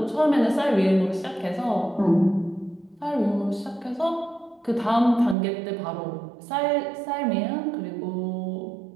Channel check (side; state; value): left; drops out; at 5.4 s